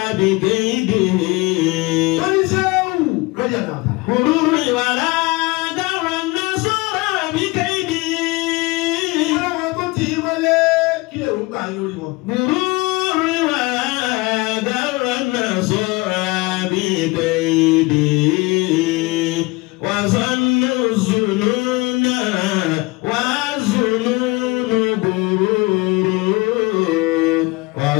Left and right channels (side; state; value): right; quieter; 24.2 dB